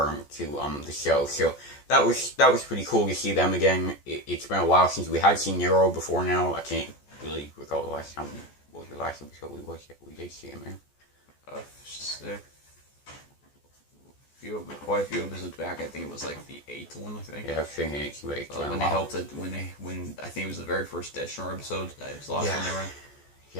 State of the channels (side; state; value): right; late; 14 ms